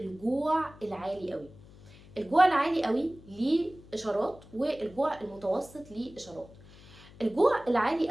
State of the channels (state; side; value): noise; left; hum, 22 dB below the sound